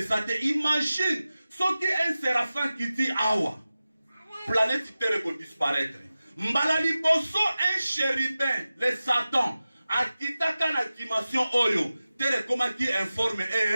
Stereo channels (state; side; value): inverted; both; correlation -0.95